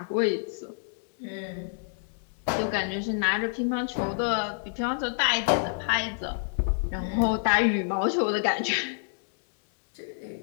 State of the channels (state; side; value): silent; right; digital silence